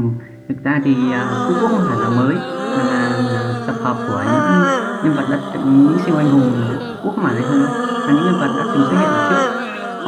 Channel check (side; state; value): both; identical; correlation 1.00